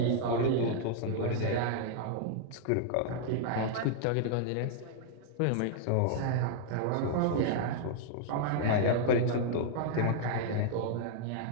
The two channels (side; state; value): both; different; correlation -0.01